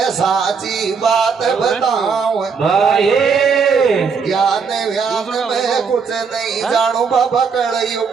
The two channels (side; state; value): left; quieter; 5.7 dB